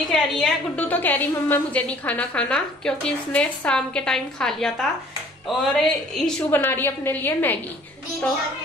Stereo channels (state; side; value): normal; both; correlation 0.54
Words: कह रही है गुड्डू, तो कह रही मम्मा मुझे नहीं खाना, क्योंकि इसने शाम के टाइम खा लिया था। और ईशू बना रही है अपने लिए मैगी, तो